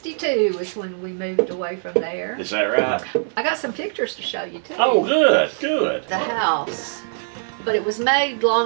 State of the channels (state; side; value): silent; left; digital silence